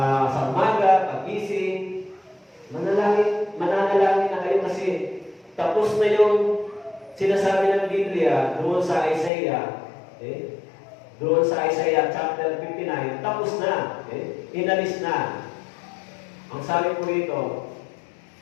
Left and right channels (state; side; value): drops out; right; at 9.3 s